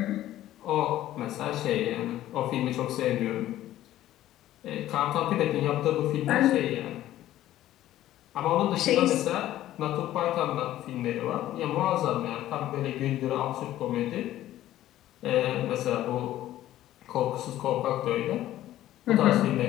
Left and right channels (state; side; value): quieter; right; 13.7 dB